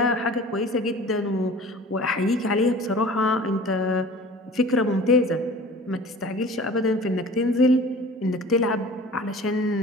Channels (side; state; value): both; normal; correlation 0.42